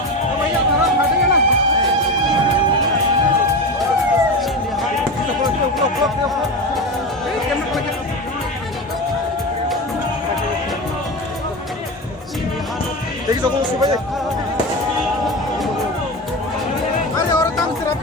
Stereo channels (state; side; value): normal; both; correlation 0.22